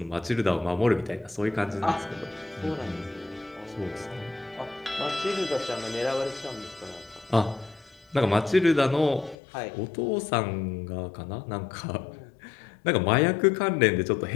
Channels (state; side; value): drops out; right; at 9.3 s